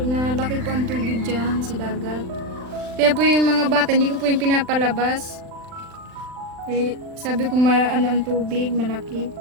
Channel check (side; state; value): left; late; 39 ms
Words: nalaki po ang tubig dyan sa dagat. Kaya po yung mga bata, hindi ko po yung pinapalabas. Eh, sabi ko ano ang tubig, malaki.